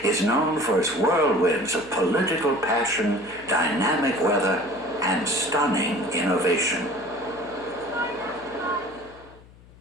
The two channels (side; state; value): left; noise; hum, 24 dB below the sound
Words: is known for its whirlwinds of political passion, dynamic weather, and stunning innovation.